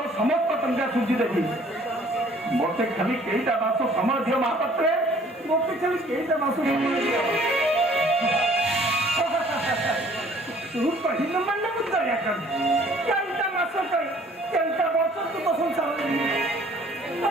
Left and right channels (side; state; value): both; normal; correlation 0.56